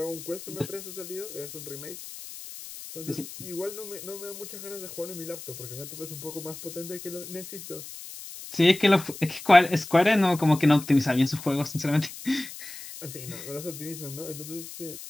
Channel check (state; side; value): noise; left; hiss, 13 dB below the sound